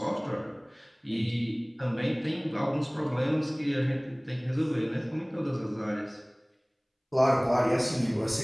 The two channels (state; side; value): identical; both; correlation 1.00